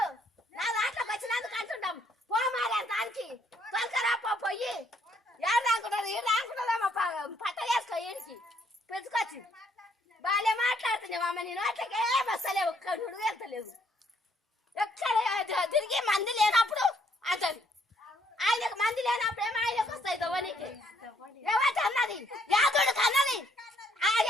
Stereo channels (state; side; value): normal; both; correlation 0.69